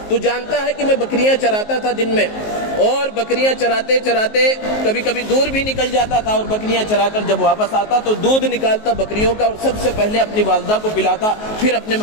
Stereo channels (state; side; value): late; right; 19 ms